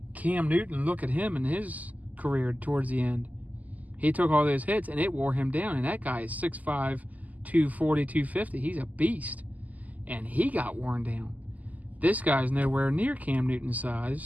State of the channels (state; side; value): late; left; 0.078 ms